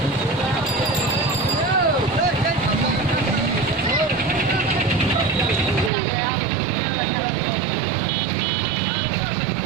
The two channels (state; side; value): drops out; left; at 5.9 s